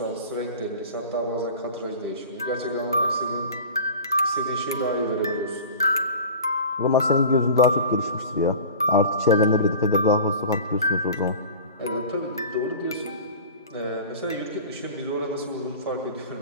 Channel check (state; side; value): inverted; both; correlation -0.38